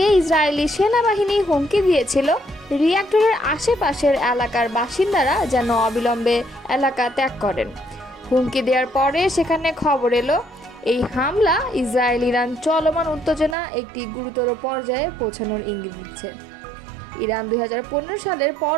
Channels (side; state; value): left; drops out; at 13.6 s